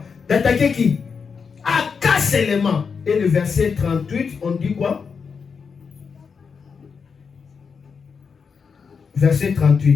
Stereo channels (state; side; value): quieter; right; 5.8 dB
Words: D'attaquer qui? Aka seulement. Et le verset 38, on dit quoi? Verset